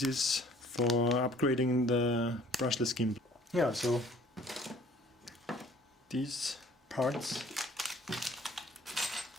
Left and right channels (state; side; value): normal; both; correlation 0.55